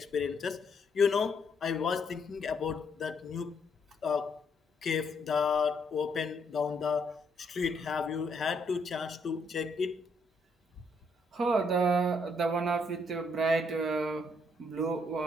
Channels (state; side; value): normal; both; correlation 0.72